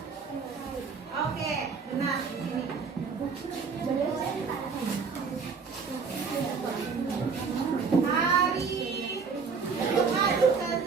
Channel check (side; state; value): left; quieter; 5.4 dB